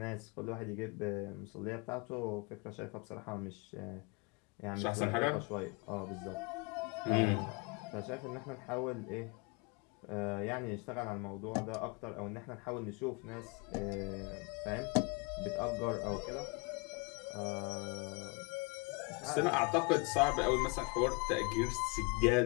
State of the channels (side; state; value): right; quieter; 28.3 dB